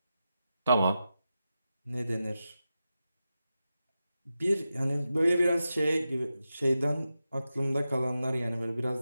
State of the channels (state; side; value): inverted; both; correlation -0.91